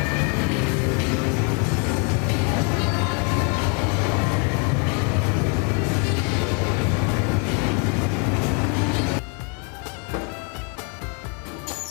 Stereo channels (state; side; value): quieter; right; 34.8 dB